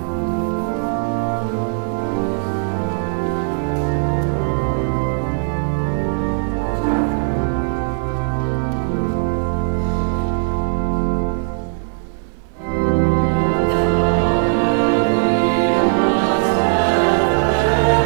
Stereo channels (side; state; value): left; silent; digital silence